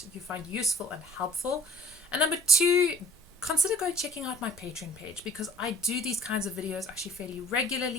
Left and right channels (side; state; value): both; normal; correlation 0.52